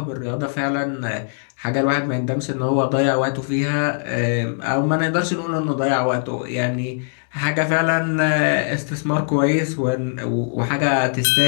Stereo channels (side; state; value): right; silent; 65 dB below the other